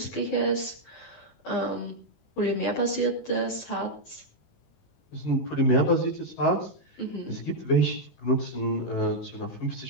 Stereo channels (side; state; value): right; late; 18 ms